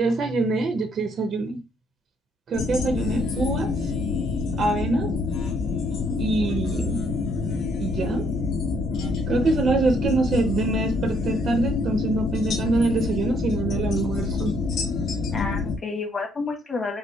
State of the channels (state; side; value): normal; both; correlation 0.69